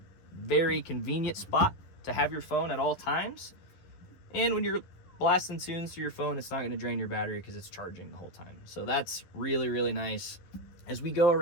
very convenient spot to have your phone at all times. And when you're blasting tunes through your phone, it's not going to drain your battery because it's charging the whole time. So that's really, really nice. As we go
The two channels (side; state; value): right; late; 11 ms